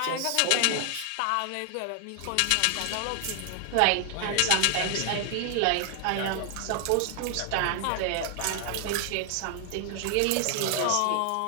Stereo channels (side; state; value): both; different; correlation 0.00